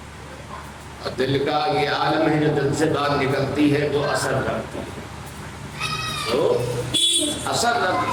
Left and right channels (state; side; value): identical; both; correlation 1.00